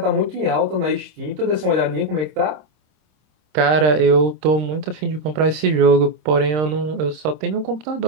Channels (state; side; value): late; left; 26 ms